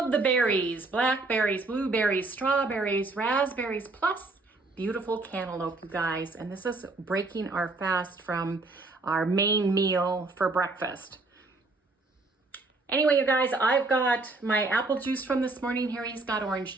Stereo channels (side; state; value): left; quieter; 3.3 dB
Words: the berries, blackberries, blueberries, strawberries, raspberries, plus beautiful cantaloupe, you guys. And this is breaking our fast from our main meal for breakfast. Anyway, you guys, I've got my apple juice from this morning. Harry's got orange